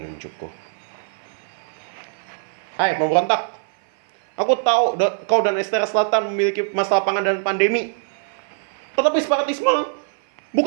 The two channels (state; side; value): silent; left; 57 dB below the other